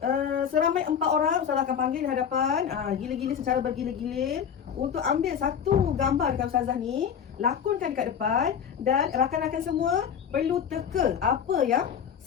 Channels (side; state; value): right; quieter; 7.9 dB